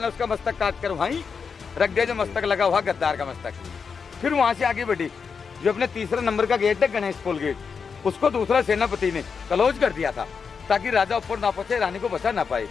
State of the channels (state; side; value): quieter; right; 5.8 dB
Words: उसका मस्तक काट कर वहीं रख दिया, जो मस्तक लगा हुआ गद्दार का मस्तक। फिर वहां से आगे बढ़ी, जो अपने तीसरा नंबर का गेट है गणेश पोल गेट, उसको दूसरा सेनापति ने क्लोज कर दिया था ताकि राजा ऊपर ना पहुंचे, रानी को बचा ना पाए।